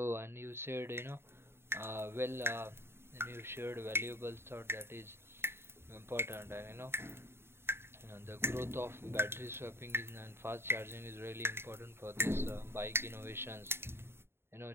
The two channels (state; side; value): late; left; 0.12 ms